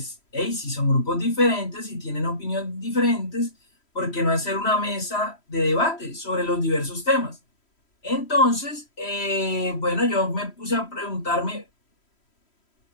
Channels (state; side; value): late; right; 3.1 ms